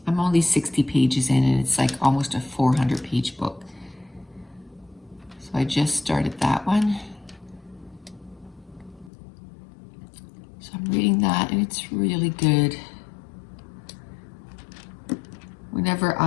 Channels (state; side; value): drops out; right; at 9.1 s